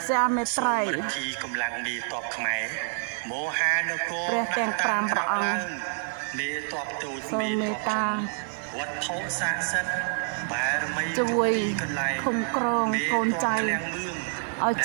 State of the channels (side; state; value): left; silent; digital silence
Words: សាមេត្រៃរិទ្ធីកម្លាំងមេតបខ្មែរមហានគរព្រះទាំង5ព្រះអង្គមេតបតូចមេតបធំវត្ថុស័ក្តិសិទ្ធិបារមីគ្រប់ទីកន្លែងឃុំក្រងកូនចៅឃ្លាំងមឿងឲ្យ